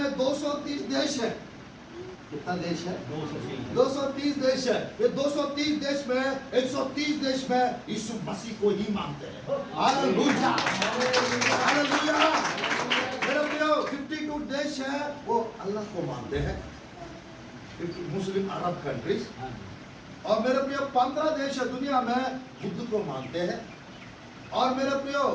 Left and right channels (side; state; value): both; identical; correlation 1.00